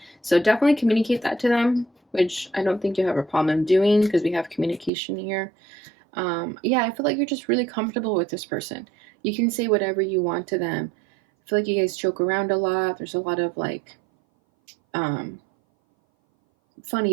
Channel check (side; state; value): left; drops out; at 4.9 s